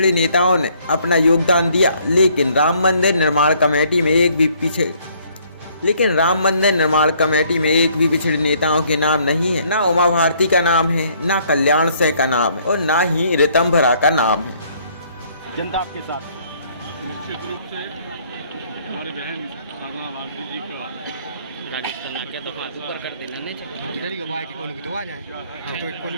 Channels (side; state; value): both; inverted; correlation -0.64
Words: नेताओं ने अपना योगदान दिया। लेकिन राम मंदिर निर्माण कमेटी में एक भी पिछड़े नेताओं के नाम नहीं है। ना उमा भारती का नाम है, ना कल्याण सिंह का नाम है और ना ही ऋतंभरा का नाम है। जनता आपके साथ निश्चित रूप से हमारी बहन साधना भारती जी का